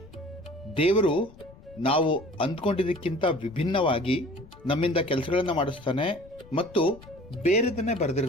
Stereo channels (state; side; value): noise; left; rumble, 22 dB below the sound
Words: ದೇವರು ನಾವು ಅಂದ್ಕೊಂಡಿದ್ದಕ್ಕಿಂತ ವಿಭಿನ್ನವಾಗಿ ನಮ್ಮಿಂದ ಕೆಲಸಗಳನ್ನು ಮಾಡಿಸ್ತಾನೆ ಮತ್ತು ಬೇರೆದನ್ನೇ